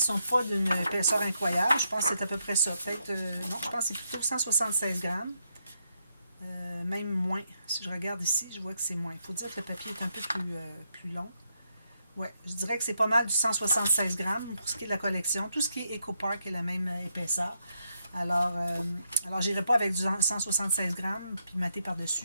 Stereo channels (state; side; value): inverted; both; correlation -0.79